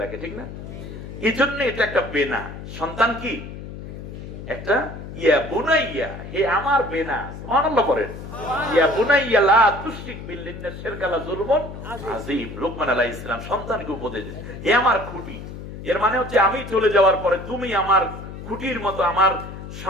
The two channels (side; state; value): left; noise; hum, 11 dB below the sound